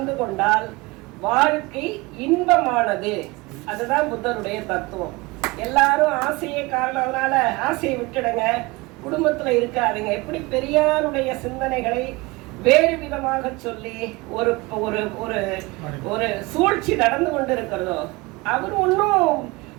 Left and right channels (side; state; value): left; quieter; 23.6 dB